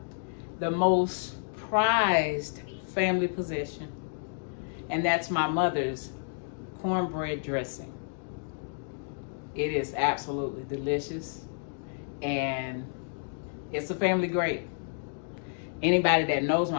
the most prized family possession, and that's my mother's cornbread dressing. It is absolutely delicious, and it's a family great. Anybody that knows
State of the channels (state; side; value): silent; right; digital silence